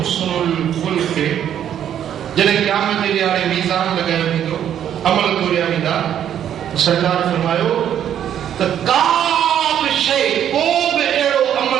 खुल्क़। जॾहिं क़यामत जे ॾियारे मीज़ान लॻायो वेंदो, अमल तोरिया वेंदा, सरकार फरमायो त का बि शइ, को बि अहिड़ो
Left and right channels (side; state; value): left; quieter; 10.0 dB